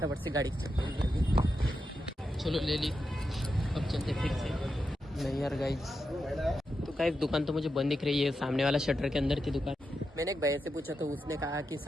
से गाड़ी की चाबी चलो ले ली। अब चलते फिर से। नहीं यार गाइस, तो गाइस दुकान तो मुझे बंद दिख रही है, सामने वाला शटर के अंदर थी दुकान। मैंने एक भैया से पूछा तो उसने कहा कि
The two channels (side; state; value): both; normal; correlation 0.87